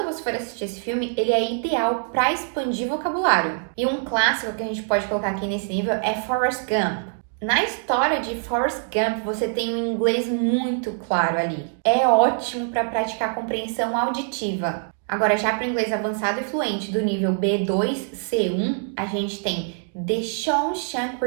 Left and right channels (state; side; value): silent; left; 63 dB below the other